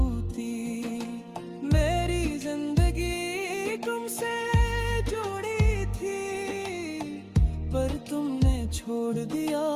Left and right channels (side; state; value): both; identical; correlation 1.00